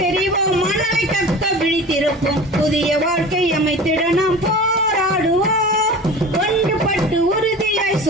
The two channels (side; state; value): both; normal; correlation 0.36